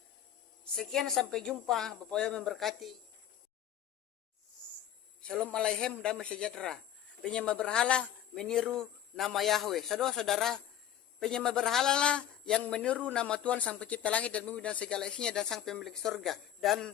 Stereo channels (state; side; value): quieter; right; 10.7 dB